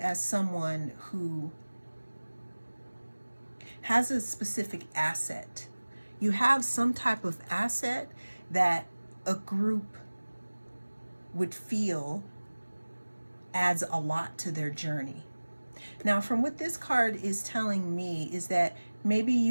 someone who has a specific asset. You have some type of asset that a group would feel adds a lot to their journey. Now, from what this card is telling me is that maybe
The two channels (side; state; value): both; inverted; correlation -1.00